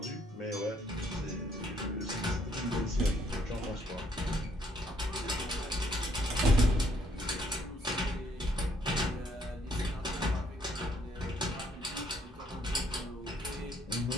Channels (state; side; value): normal; both; correlation 0.68